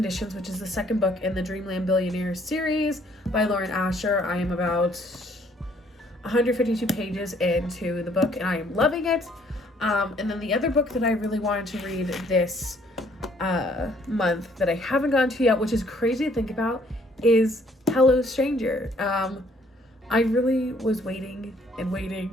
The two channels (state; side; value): normal; both; correlation 0.63